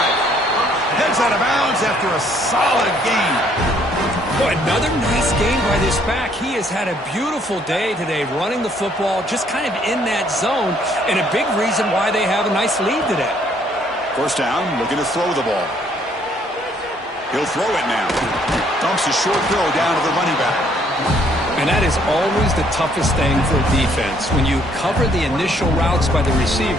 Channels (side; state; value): both; normal; correlation 0.65